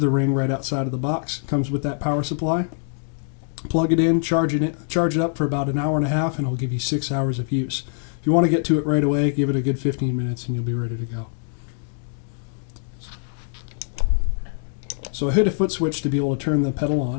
ring right outside of the box. It comes with that power supply. Plug it in, charge it up for about an hour and a half, and it'll give you 6 hours of use. If you want to get to it right away, give it a good 15 minutes and you'll be ready to go. So I hit a foot switch to be able to turn the pedal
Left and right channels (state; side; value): silent; right; digital silence